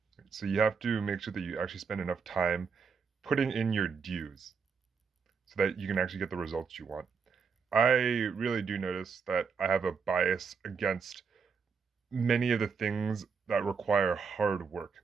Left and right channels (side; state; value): left; quieter; 5.7 dB